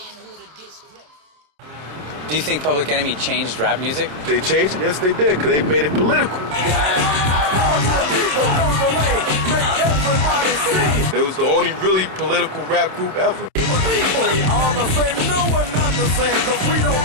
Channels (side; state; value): left; late; 27 ms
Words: a disgrace. Do you think Public Enemy changed rap music? They changed it? Yes, they did, because they made it political. It was the only really political rap group ever. We all the same, no one not the same, because we don't